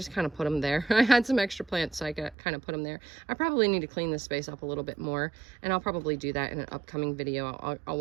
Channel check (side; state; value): left; drops out; at 2.4 s